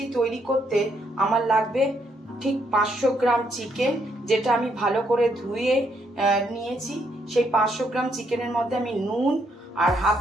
তৈরি করতে আমার লাগবে ঠিক 500 গ্রাম চিকেন, যেটা আমি ভালো করে ধুয়ে নিয়েছি। সেই 500 গ্রাম চিকেনের মধ্যে আমি নুন আর হাফ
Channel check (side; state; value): both; normal; correlation 0.74